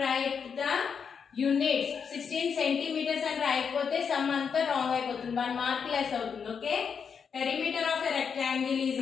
write the units. 16 centimeters and రాయకపోతే some అంతా wrong అయిపోతుంది. 1 mark less అవుతుంది. Okay. Perimeter of a rectangle is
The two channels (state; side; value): quieter; right; 6.5 dB